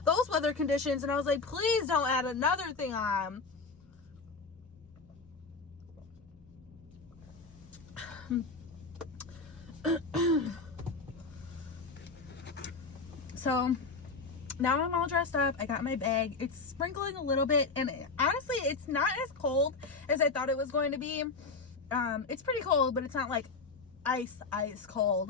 weather conditions. And I was like, please don't add another thing on. So now I'm all dressed up. I got my bag. It's sprinkling a little bit, and honestly, it's not as cold as I thought it was going to be. It's pretty cold, but it's not like ice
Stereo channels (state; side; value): quieter; right; 4.2 dB